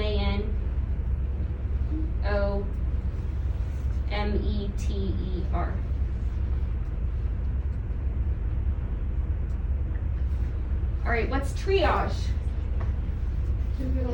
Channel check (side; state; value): both; identical; correlation 1.00